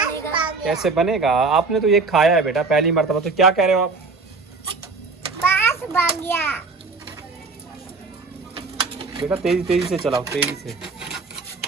कैसे बनेगा? आपने तो ये खाया है बेटा पहली मर्तबा, तो क्या कह रहे हो आप? बस बन गया। बेटा तेजी तेजी से चलाओ, तेजी से।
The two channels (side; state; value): left; quieter; 4.0 dB